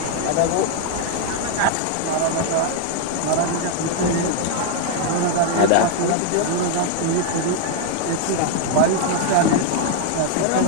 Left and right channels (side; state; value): both; different; correlation 0.01